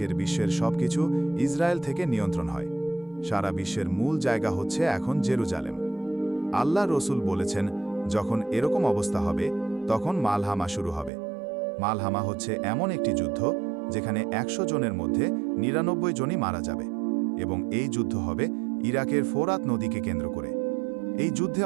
বিশ্বের সবকিছু ইসরায়েল থেকে নিয়ন্ত্রণ হয়। সারা বিশ্বের মূল জায়গা হচ্ছে এখন জেরুজালেম। আল্লাহ রসুল বলেছেন, যখন এরকম অবস্থা হবে তখন মালহামা শুরু হবে। মালহামা হচ্ছে এমন একটি যুদ্ধ যেখানে 100 জনের মধ্যে 99 জনই মারা যাবে, এবং এই যুদ্ধ হবে ইরাকের ফোরাত নদীকে কেন্দ্র করে। এই যুদ্ধে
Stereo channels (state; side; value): drops out; left; at 11.1 s